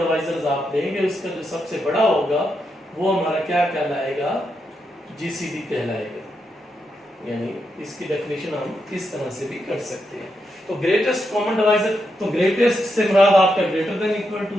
आप देंगे उसका जो सबसे बड़ा होगा वो हमारा क्या कहलाएगा, जीसीडी कहलाएगा। यानी इसकी डेफिनेशन हम इस तरह से भी कर सकते हैं। तो ग्रेटेस्ट कॉमन डिवाइजर, तो ग्रेटेस्ट से मुराद आपका ग्रेटर देन इक्वल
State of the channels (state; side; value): normal; both; correlation 0.83